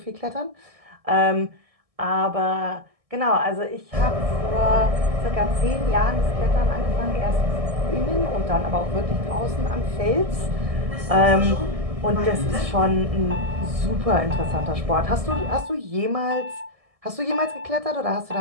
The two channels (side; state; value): left; late; 1.6 ms